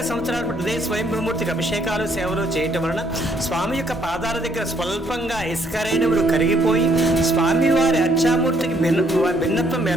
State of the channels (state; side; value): normal; both; correlation 0.68